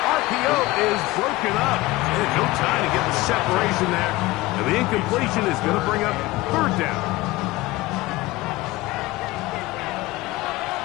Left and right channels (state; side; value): quieter; right; 19.6 dB